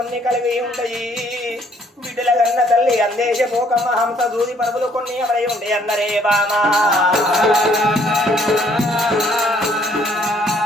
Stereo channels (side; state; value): both; normal; correlation 0.64